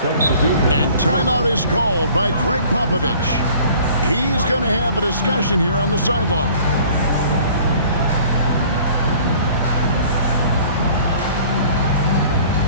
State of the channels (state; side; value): inverted; both; correlation -0.51